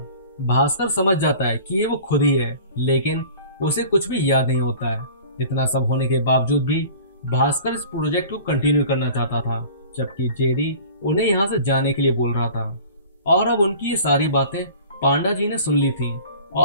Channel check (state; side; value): inverted; both; correlation -0.44